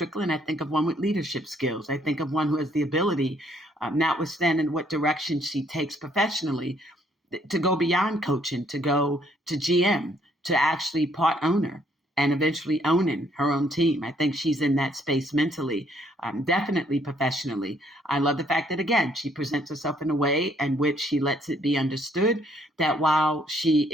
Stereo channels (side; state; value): both; normal; correlation 0.67